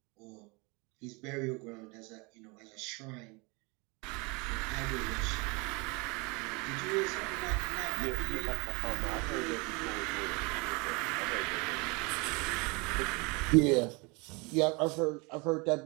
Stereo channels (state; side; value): quieter; left; 28.7 dB